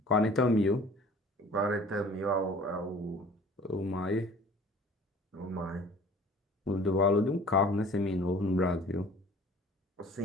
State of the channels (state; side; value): normal; both; correlation 0.48